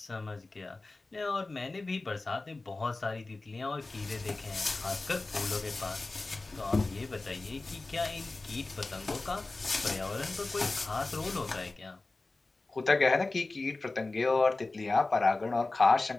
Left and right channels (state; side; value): quieter; right; 3.3 dB